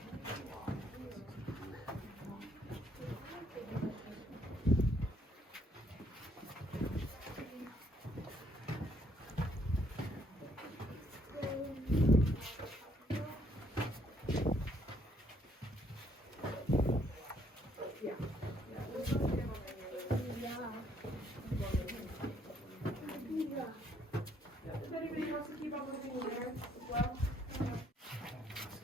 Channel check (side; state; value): both; normal; correlation 0.68